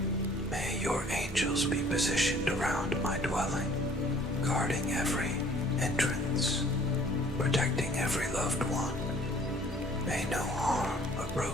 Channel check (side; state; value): both; normal; correlation 0.55